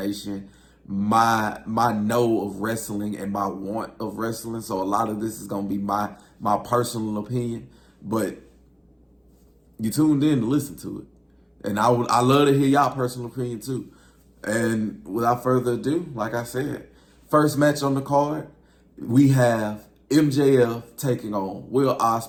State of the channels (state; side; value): identical; both; correlation 1.00